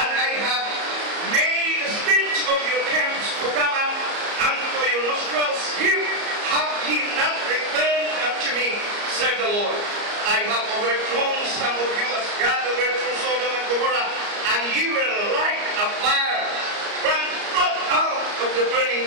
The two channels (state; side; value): late; left; 34 ms